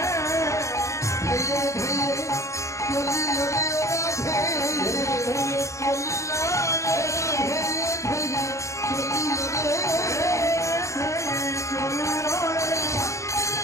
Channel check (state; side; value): late; right; 0.15 ms